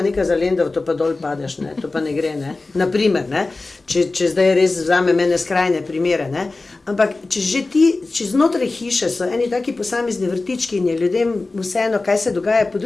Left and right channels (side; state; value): right; quieter; 3.4 dB